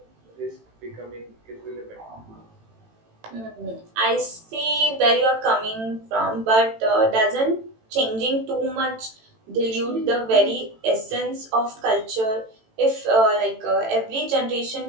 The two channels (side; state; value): left; late; 18 ms